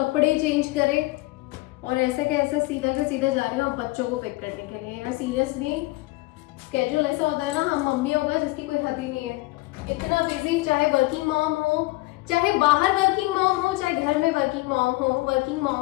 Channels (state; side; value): quieter; right; 21.6 dB